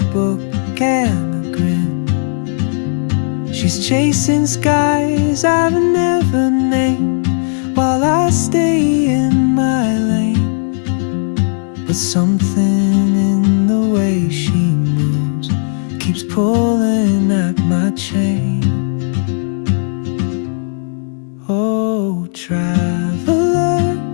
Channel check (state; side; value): silent; right; digital silence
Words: and a grin. She's chasing skies I've never named, while I stay in my lane. But something in the way she moves keeps pulling at my chain. Oh, traveler,